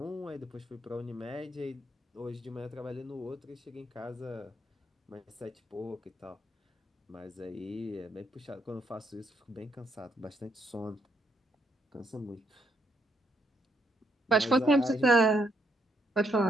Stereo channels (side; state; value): both; normal; correlation 0.75